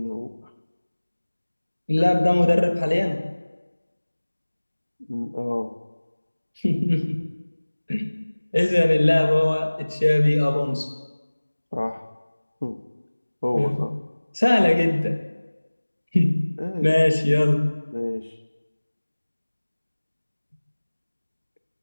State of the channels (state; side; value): inverted; both; correlation -1.00